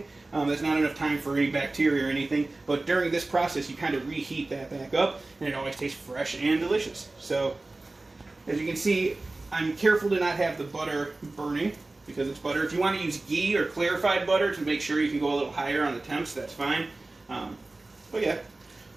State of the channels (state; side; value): quieter; left; 3.1 dB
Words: That's not enough time for any bacteria or anything, but during this process you kind of reheat that back up and it always tastes fresh and delicious. So as you can see, I'm careful to not have the butter burning because it's butter. If you want to use ghee or clarified butter to make sure you can go a little higher on the temps, that's fine. But yeah,